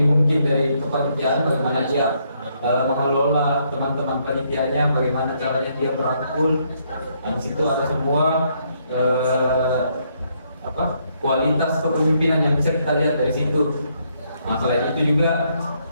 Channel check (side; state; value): both; inverted; correlation -0.72